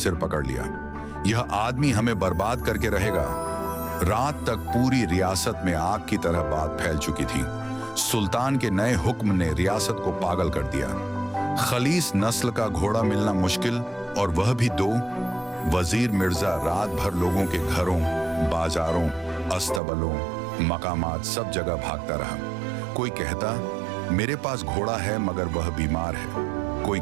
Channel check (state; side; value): drops out; left; at 19.8 s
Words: पकड़ लिया। यह आदमी हमें बर्बाद करके रहेगा। रात तक पूरी रियासत में आग की तरह बात फैल चुकी थी। सुल्तान के नए हुक्म ने रियासत को पागल कर दिया। खलीस नस्ल का घोड़ा मिलना मुश्किल, और वह भी 2। वजीर मिर्जा रात भर लोगों के घरों, बाजारों, अस्तबलों, मकामात सब जगह भागता रहा। कोई कहता, मेरे पास घोड़ा है मगर वह बीमार है। कोई